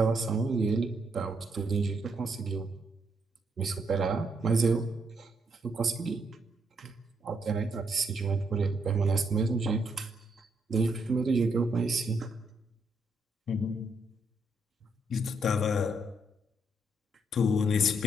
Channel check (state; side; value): normal; both; correlation 0.75